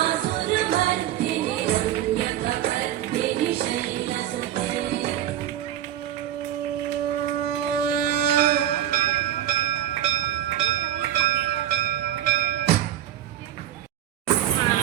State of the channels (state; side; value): quieter; left; 11.9 dB